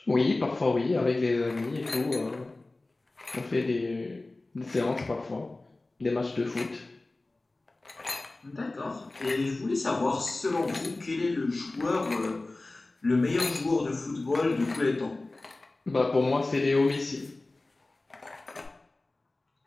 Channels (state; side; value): quieter; right; 3.0 dB